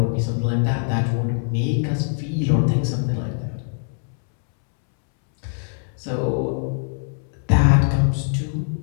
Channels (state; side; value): silent; right; 63 dB below the other